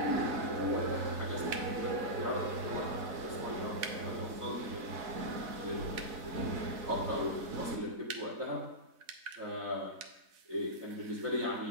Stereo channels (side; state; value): left; late; 4.0 ms